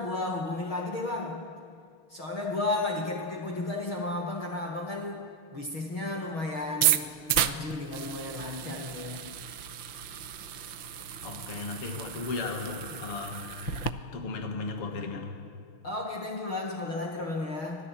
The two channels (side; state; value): right; late; 6.5 ms